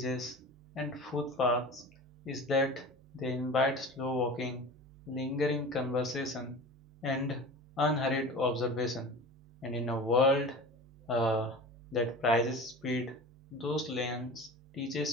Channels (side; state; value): both; normal; correlation 0.35